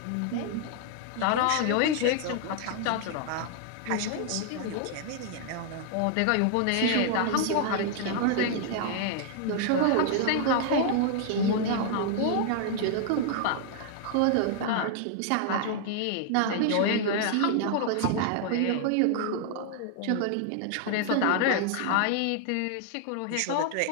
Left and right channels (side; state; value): both; different; correlation 0.00